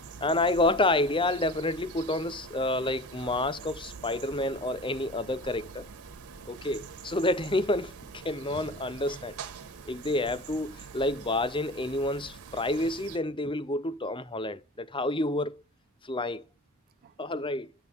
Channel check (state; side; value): normal; both; correlation 0.38